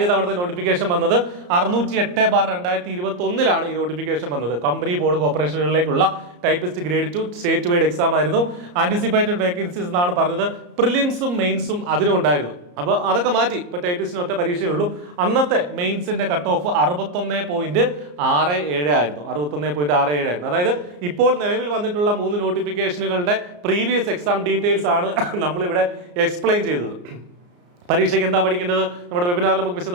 തവണത്തെ നോട്ടിഫിക്കേഷൻ വന്നത് 608/2021 ഈ നോട്ടിഫിക്കേഷൻ വന്നത്. കമ്പനി, ബോർഡ്, കോർപ്പറേഷനുകളിലേക്കുള്ള typist grade 2 state wide exam ആയിരുന്നു. ആന്റിസിപ്പേറ്റഡ് വേക്കൻസീസ് എന്നാണ് പറഞ്ഞത്. പ്രിലിംസും മെയിൻസും അതിനും ഉണ്ടായിരുന്നു. അപ്പോൾ അതൊക്കെ മാറ്റി. ഇപ്പൊ ടൈപ്പിസ്റ്റിന് ഒറ്റ പരീക്ഷയേ ഉള്ളൂ. അന്നത്തെ മെയിൻസിന്റെ കട്ട് ഓഫ് 61.67 ആയിരുന്നു. 61.67 ആയിരുന്നു. അതായത് ഇപ്പോൾ നിലവിൽ വന്നിട്ടുള്ള 3 നോട്ടിഫിക്കേഷനുകളുടെ പ്രീവിയസ് എക്സാം ഡീറ്റെയിൽസ് ആണ് നമ്മളിവിടെ എക്സ്പ്ലെയിൻ ചെയ്തത്. പരീക്ഷയ്ക്ക് എന്താ പഠിക്കേണ്ടത് നമ്മുടെ വെബിനാറിൽ നമുക്ക്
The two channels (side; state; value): left; late; 34 ms